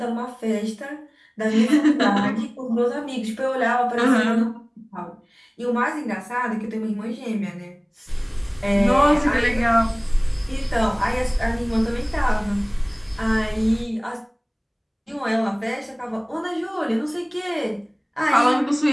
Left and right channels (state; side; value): identical; both; correlation 1.00